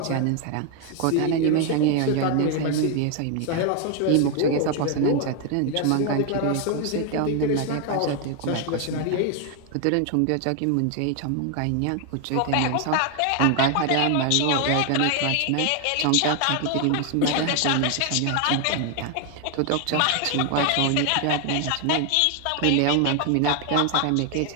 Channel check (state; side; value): different; both; correlation 0.01